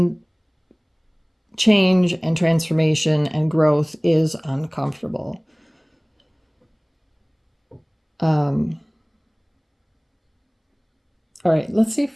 change and transformation and growth is uncomfortable. All right, let's see if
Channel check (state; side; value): identical; both; correlation 1.00